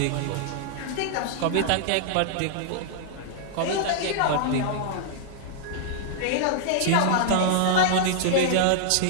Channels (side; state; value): both; different; correlation -0.01